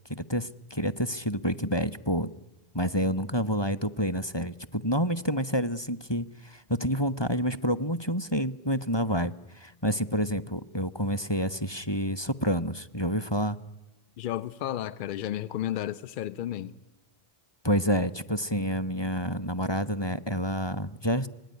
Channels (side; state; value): right; late; 1.2 ms